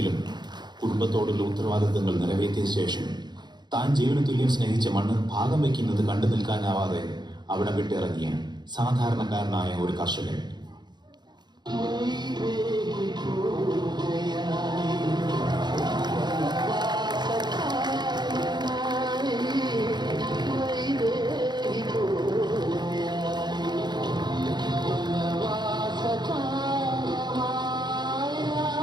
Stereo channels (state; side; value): late; left; 0.21 ms